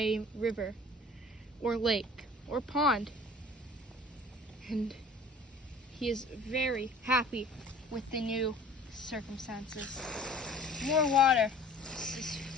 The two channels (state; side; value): normal; both; correlation 0.47